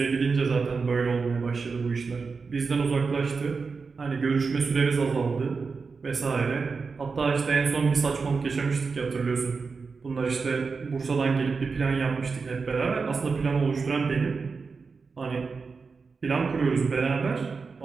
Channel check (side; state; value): left; quieter; 4.8 dB